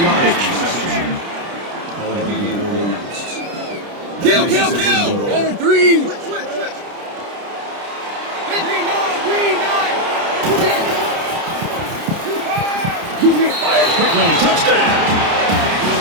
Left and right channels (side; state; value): left; late; 30 ms